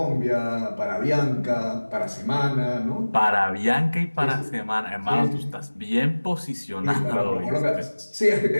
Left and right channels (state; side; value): inverted; both; correlation -1.00